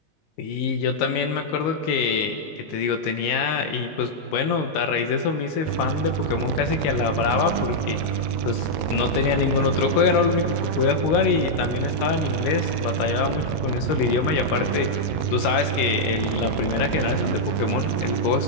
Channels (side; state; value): right; late; 19 ms